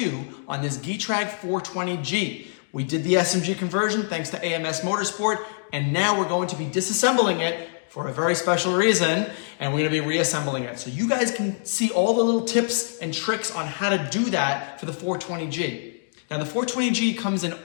on this Getrag 420G. We did the SMG conversion thanks to AMS Motorsport, and now we're going to be disassembling it for a very special reason, and we're going to be reassembling it. So you guys can see all the little tips and tricks on how to do that for the 420G. Now the 420G comes in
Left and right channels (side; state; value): right; silent; digital silence